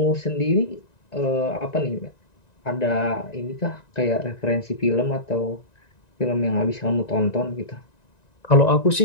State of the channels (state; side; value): late; right; 1.9 ms